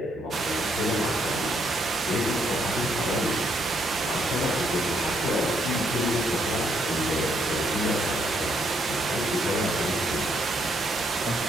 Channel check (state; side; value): normal; both; correlation 0.73